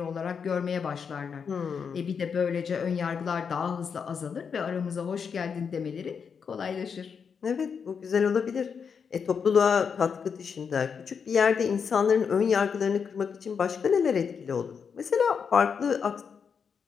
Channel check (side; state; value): right; quieter; 6.4 dB